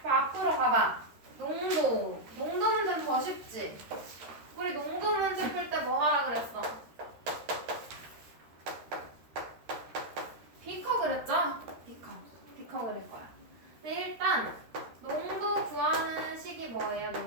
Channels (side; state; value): left; late; 13 ms